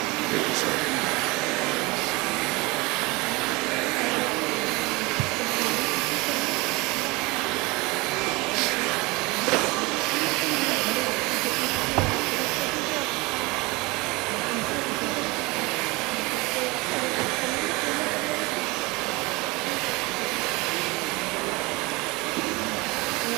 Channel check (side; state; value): left; quieter; 24.4 dB